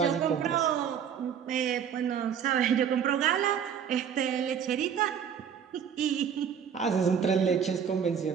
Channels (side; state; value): left; quieter; 7.9 dB